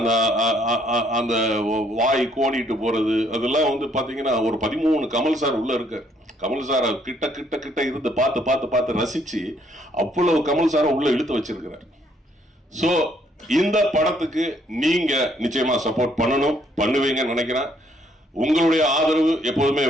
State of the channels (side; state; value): both; normal; correlation 0.67